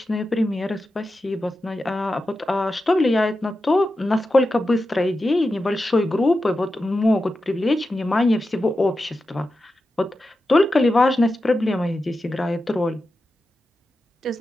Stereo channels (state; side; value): normal; both; correlation 0.91